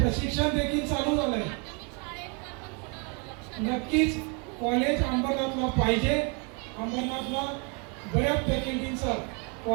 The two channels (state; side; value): quieter; left; 34.6 dB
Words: देखील चालू झालंय. नक्कीच कॉलेज अंबरनाथला पाहिजे. अंबरनाथला बऱ्याच फॅकल्टीचं